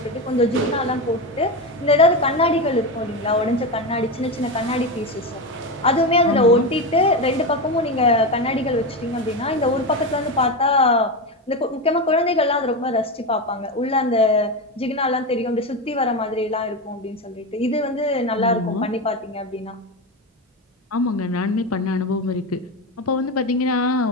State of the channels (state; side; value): normal; both; correlation 0.16